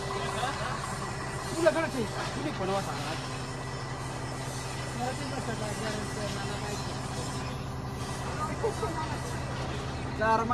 तुझ्याकडे तुम्ही बनवा सांगा. तर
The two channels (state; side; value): identical; both; correlation 1.00